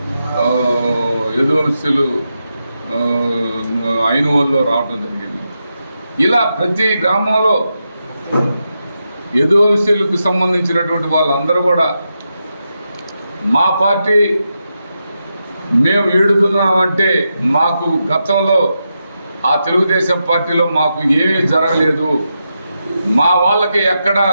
యదువంశీలు ఐనువల్లో రావడం జరిగింది. ఇలా ప్రతి గ్రామంలో యదువంశీలకు సంబంధించినటువంటి వాళ్ళందరూ కూడా మా పార్టీ మేము ఈడుతున్నామంటే మాకు గతంలో ఆ తెలుగుదేశం పార్టీలో మాకు ఏమీ జరగలేదు, మా వాళ్ళకి ఎక్కడా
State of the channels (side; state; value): both; inverted; correlation -0.87